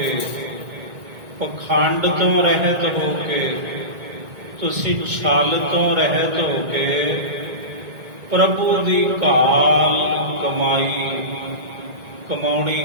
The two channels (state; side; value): late; left; 1.9 ms